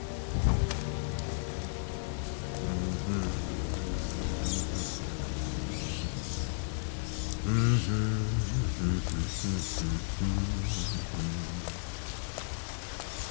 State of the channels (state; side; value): silent; right; 55 dB below the other